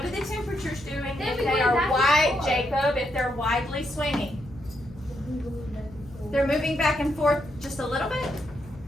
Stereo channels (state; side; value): noise; left; hum, 20 dB below the sound